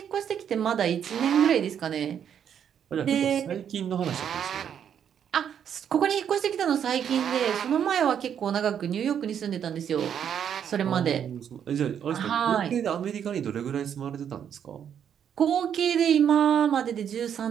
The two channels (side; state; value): left; quieter; 8.6 dB